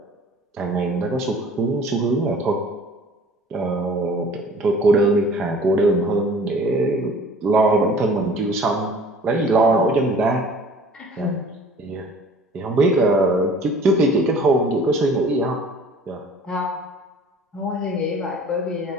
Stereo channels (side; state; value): both; normal; correlation 0.49